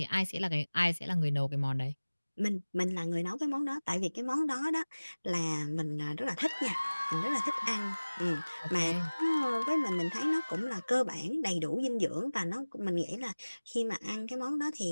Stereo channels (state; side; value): inverted; both; correlation -1.00